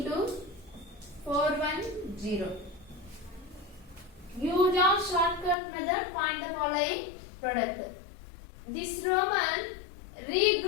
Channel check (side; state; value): right; drops out; at 5.6 s